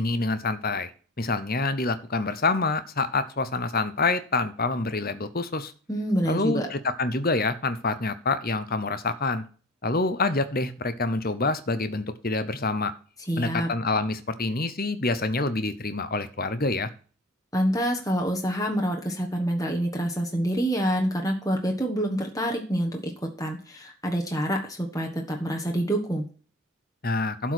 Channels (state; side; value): normal; both; correlation 0.40